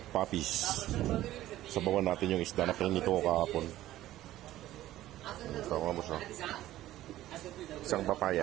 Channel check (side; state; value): left; quieter; 14.5 dB